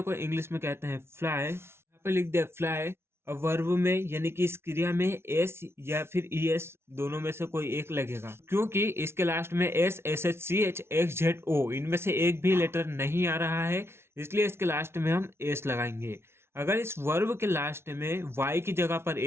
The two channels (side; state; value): left; late; 0.12 ms